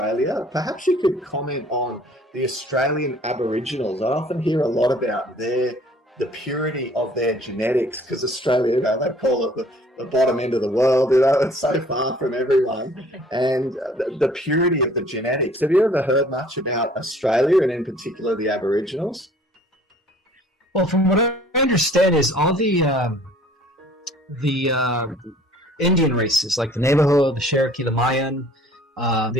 perhaps you could comment on the Australian Aboriginals. I often hear a lot about the purity of their genetics, because Australia, they call it the bottom end of the world, it's so far from everyone. And the purity of the genetics. Have you ever heard much about Australia, and in particular the Aboriginals? Well, from what I understand is all the Indian races, like the Navajo, the Cherokee, the Mayan,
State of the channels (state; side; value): normal; both; correlation 0.54